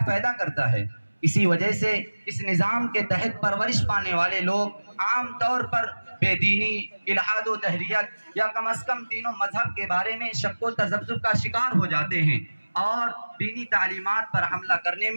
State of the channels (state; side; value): inverted; both; correlation -1.00